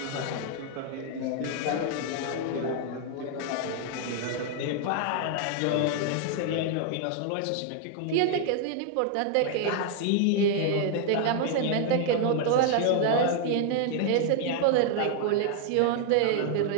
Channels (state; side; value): different; both; correlation 0.00